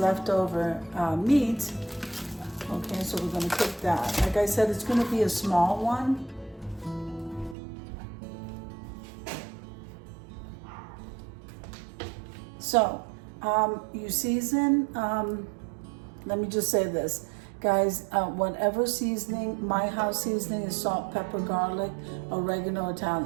meat. Okay, so we're gonna cook that. Like I said, it's gonna be a small one. So, you season, let me just say this. Guys, whatever seasoning, my house seasoning is salt, pepper, garlic, oregano,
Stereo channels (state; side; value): drops out; left; at 7.6 s